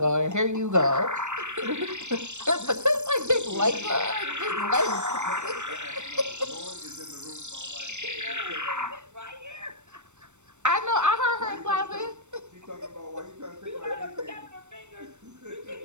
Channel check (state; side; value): late; left; 0.84 ms